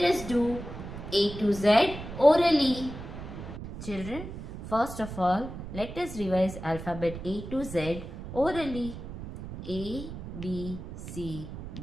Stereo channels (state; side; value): noise; right; rumble, 10 dB below the sound